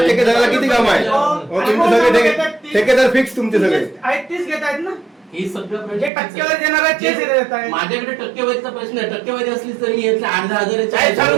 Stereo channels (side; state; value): left; drops out; at 6.1 s